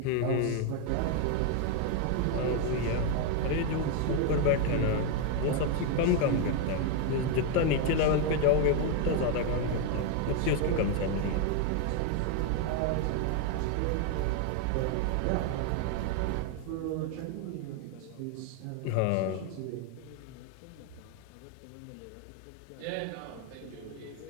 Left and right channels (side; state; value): both; different; correlation 0.01